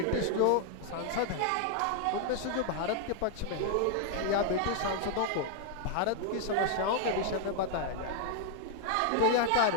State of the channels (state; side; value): different; both; correlation 0.00